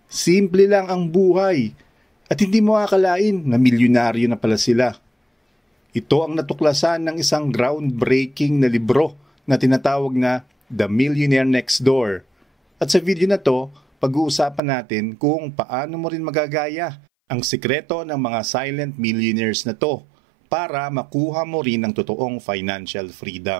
Simple lang ang buhay. At hindi mo akalain na milyonaryo na pala sila. Ito ang natuklasan ng isang groundbreaking na libro na tinatawag na The Millionaire Next Door. At sa video na to, pag-uusapan natin kung paano mo rin magagaya ang sikreto ng mga silent millionaires na to para makuha mo rin ang totoong financial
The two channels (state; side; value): drops out; left; at 14.6 s